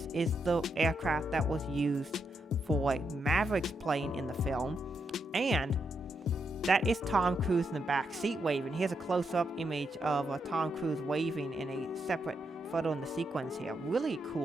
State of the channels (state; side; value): normal; both; correlation 0.81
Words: is the aircraft that was used for Maverick's plane in the film, and that is Tom Cruise in the back seat waving. Here's a close-up image of Tom Cruise waving in a separate photo in the sequence here. Really